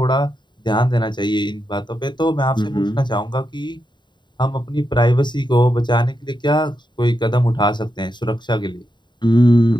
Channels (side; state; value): right; late; 0.22 ms